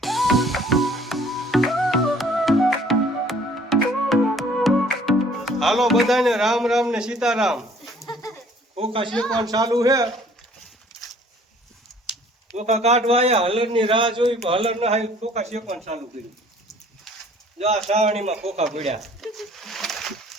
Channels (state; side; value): normal; both; correlation 0.56